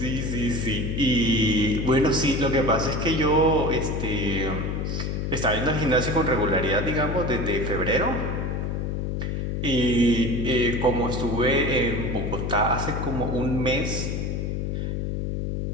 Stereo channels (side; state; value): left; noise; hum, 2 dB below the sound